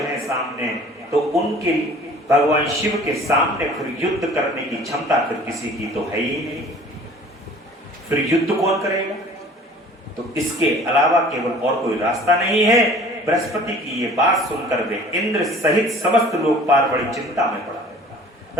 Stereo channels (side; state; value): both; normal; correlation 0.48